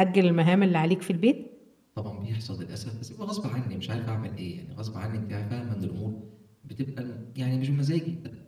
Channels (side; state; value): both; identical; correlation 1.00